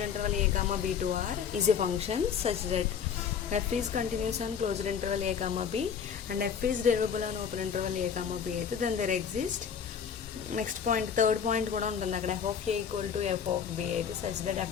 interval a comma b to r is a function such that f is continuous on closed interval a comma b and f is derivable on open interval a comma b అయితే then there exist next point third point కూడా ఉంటుంది అక్కడ. f of a equal to f of b అయితే such that f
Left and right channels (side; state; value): right; quieter; 7.3 dB